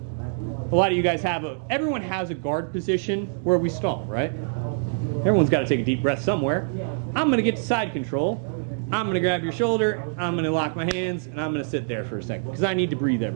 A lot of you guys everyone has a guard position where we stall, right? Everyone's got to take a deep breath somewhere. I'm going to get to side control. I'm going to grab your shoulder, I'm going to lock my hands, and I'm going to sit there for a second because I need to breathe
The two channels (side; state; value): left; silent; digital silence